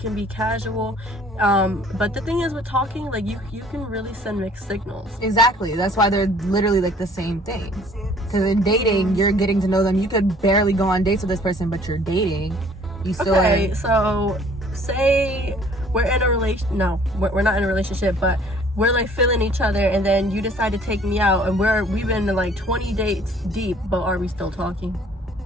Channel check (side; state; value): both; normal; correlation 0.56